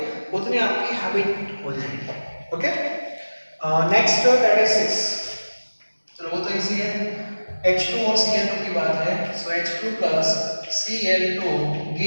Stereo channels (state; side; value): inverted; both; correlation -1.00